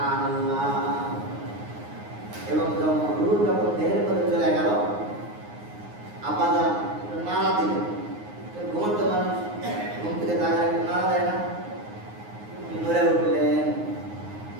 এবং যখন রূহ যখন দেহের মধ্যে চলে গেল, আপাদান নাড়া দিলেন। ঘুমন্ত মানুষ ঘুম থেকে জাগায় নাড়া দেয় না, নড়ে উঠলেন।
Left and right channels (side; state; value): left; late; 9.6 ms